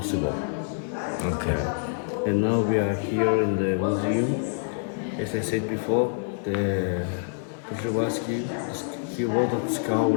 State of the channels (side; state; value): right; silent; 61 dB below the other